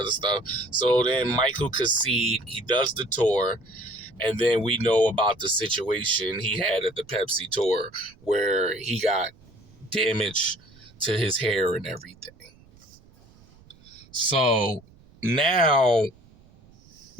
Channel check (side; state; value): right; noise; rumble, 26 dB below the sound